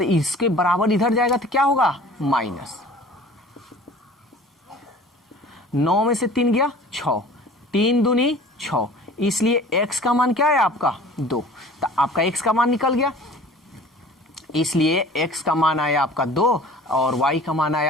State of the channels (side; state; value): both; normal; correlation 0.45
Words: इसके बराबर इधर जाएगा तो क्या होगा माइनस। 9 में से 3 गया 6, 3 दूनी 6, इसलिए x का मान क्या है आपका 2। तो आपका x का मान निकल गया, इसलिए x का मान आया आपका 2 और y का मान